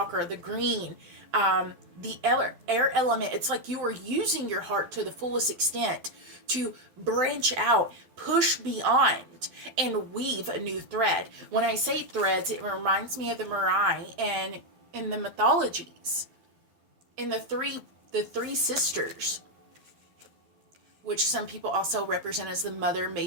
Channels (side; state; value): left; late; 12 ms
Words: the green, the air element, it's like you are using your heart to the fullest extent to branch out, push beyond, and weave a new thread. When I say threads, it reminds me of the Mirai and in the mythologies, in the three sisters, which some people also represent as the mother,